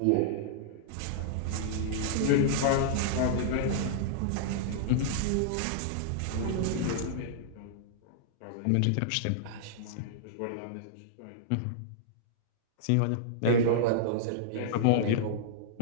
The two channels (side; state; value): both; different; correlation -0.01